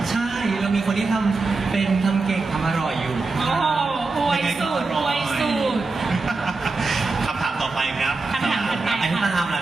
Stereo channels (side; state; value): left; quieter; 3.8 dB